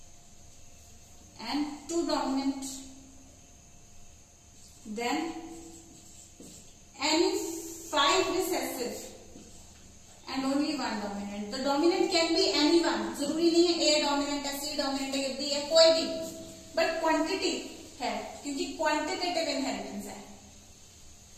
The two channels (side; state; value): both; identical; correlation 1.00